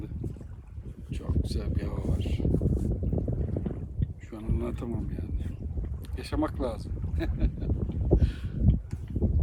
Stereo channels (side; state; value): both; identical; correlation 1.00